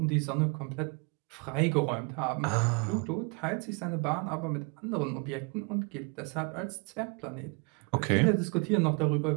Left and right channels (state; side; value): quieter; left; 32.7 dB